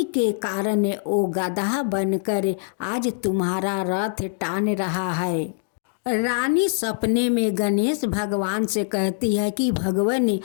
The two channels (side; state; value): right; silent; 63 dB below the other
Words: के कारण वो गधा बनकर आज तुम्हारा रथ टान रहा है। रानी सपने में गणेश भगवान से कहती है कि भगवान,